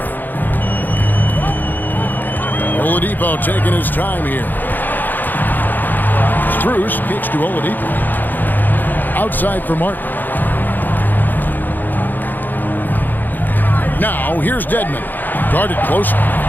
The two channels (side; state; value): right; late; 0.087 ms